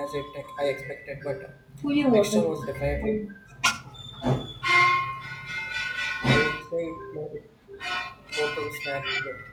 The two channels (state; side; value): identical; both; correlation 1.00